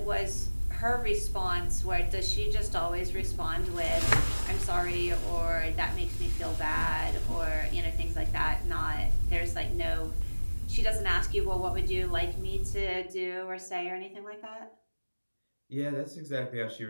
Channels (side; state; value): both; inverted; correlation -1.00